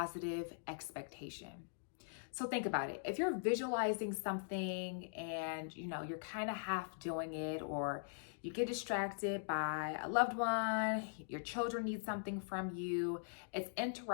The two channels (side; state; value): right; silent; digital silence